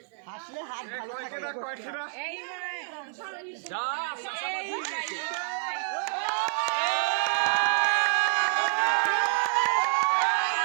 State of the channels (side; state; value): left; silent; digital silence